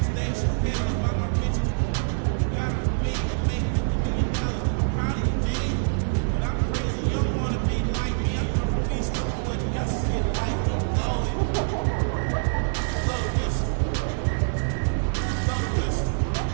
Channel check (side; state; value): left; silent; digital silence